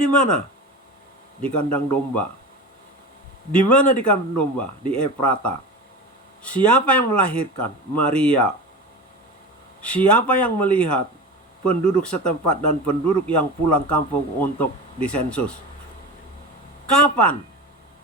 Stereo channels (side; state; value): both; normal; correlation 0.29